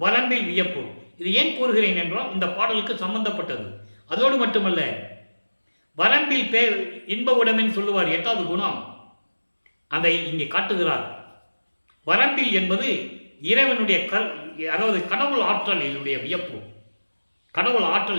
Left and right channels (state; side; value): inverted; both; correlation -1.00